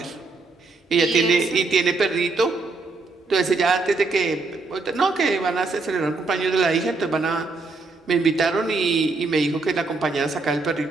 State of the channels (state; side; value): quieter; left; 3.7 dB